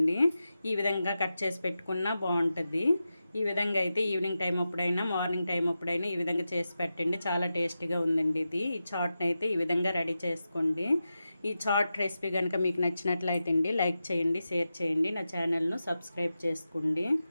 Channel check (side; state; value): both; inverted; correlation -0.91